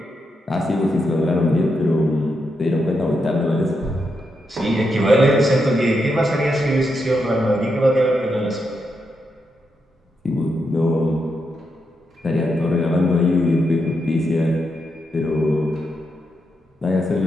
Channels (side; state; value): both; normal; correlation 0.83